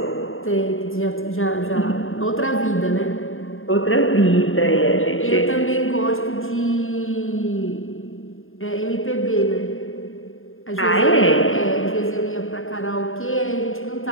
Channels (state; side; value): late; right; 0.59 ms